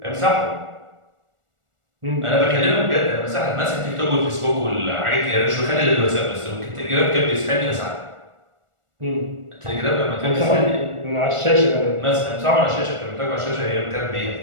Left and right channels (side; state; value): left; late; 1.4 ms